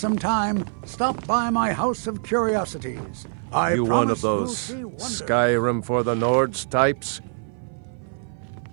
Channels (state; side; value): silent; left; 56 dB below the other